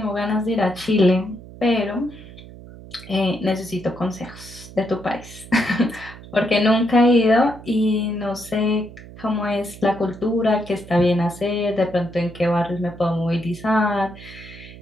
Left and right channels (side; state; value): right; noise; hum, 17 dB below the sound